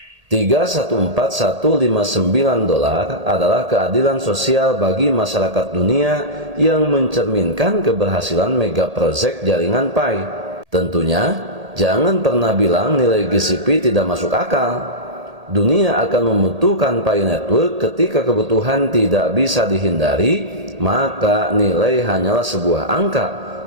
$314.159 adalah keadilan sosial bagi masyarakat dunia yang mencerminkan keberhasilan mega project jaringan Pi. Tentunya, jangan pernah bilang nilai GCP tidak masuk akal. Dunia akan membutuhkan Pi Network ketika kebutuhan tidak bisa dihindari, maka nilai hanyalah sebuah angka.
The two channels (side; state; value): left; late; 1.8 ms